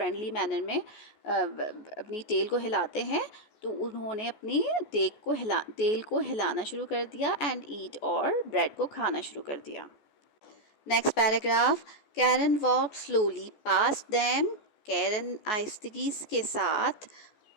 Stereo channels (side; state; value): right; late; 14 ms